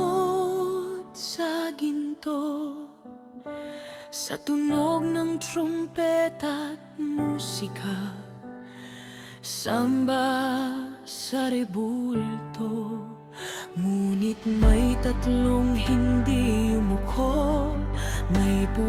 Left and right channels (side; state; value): both; identical; correlation 1.00